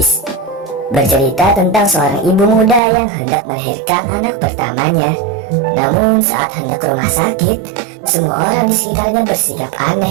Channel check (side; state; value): left; drops out; at 2.8 s